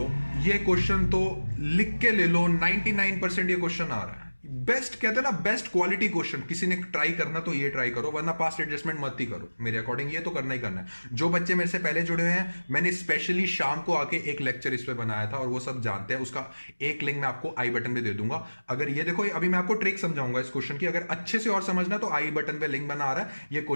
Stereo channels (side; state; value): both; inverted; correlation -1.00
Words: ये क्वेश्चन तो लिख के ले लो, 99% ये क्वेश्चन आ रहा है। बेस्ट कहते हैं ना, बेस्ट क्वालिटी क्वेश्चन, किसी ने ट्राई करना तो ये ट्राई करो, वरना पास्ट एडजस्टमेंट मत ही करो। मेरे अकॉर्डिंग ये तो करना ही करना है। जो बच्चे मेरे से पहले जुड़े हुए हैं, मैंने स्पेशली शाम को आके एक लेक्चर इस पे बनाया था और वो सब जानते हैं, उसका एक लिंक मैं आपको आई बटन पे दे दूंगा। अगर ये देखो, अभी मैं आपको ट्रिक समझाऊंगा इस क्वेश्चन की, अगर अच्छे से और समझना तो आई बटन पे लिंक बना आ रहा है, ये